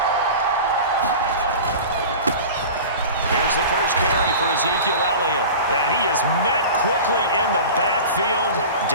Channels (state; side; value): inverted; both; correlation -0.35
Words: Here's the first carry for Ezekiel Elliott. And he is met quickly in the backfield.